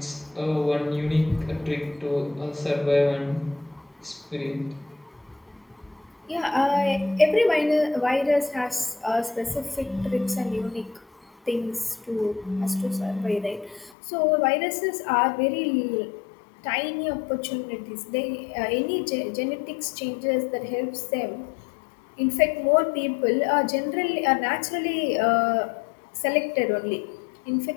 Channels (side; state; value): right; drops out; at 14.0 s